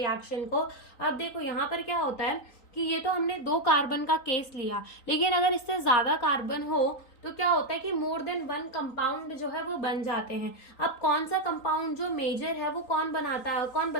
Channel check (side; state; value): right; late; 3.9 ms